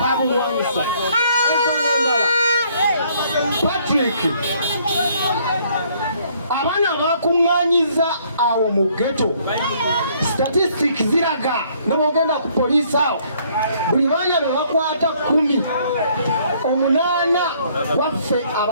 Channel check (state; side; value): inverted; both; correlation -0.64